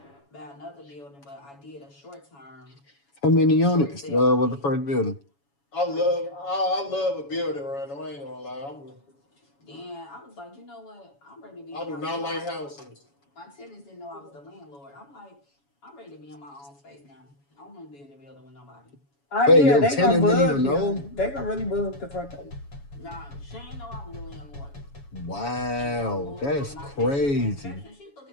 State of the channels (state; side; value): late; right; 7.1 ms